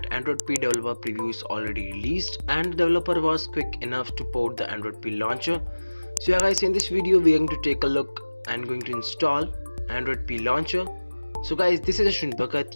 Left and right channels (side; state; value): both; inverted; correlation -1.00